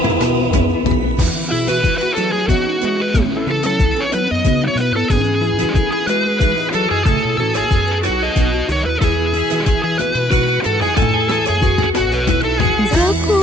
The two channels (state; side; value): normal; both; correlation 0.67